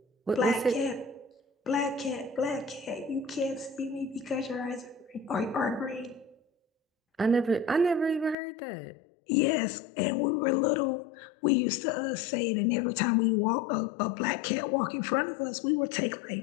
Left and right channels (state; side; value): drops out; right; at 8.3 s